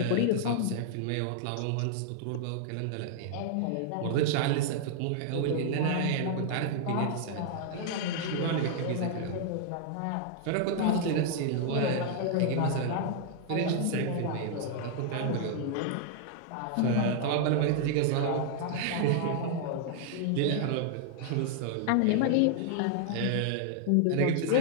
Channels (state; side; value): different; both; correlation -0.01